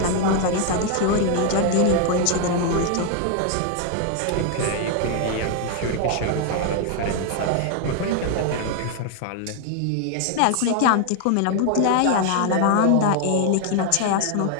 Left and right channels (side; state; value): both; different; correlation 0.00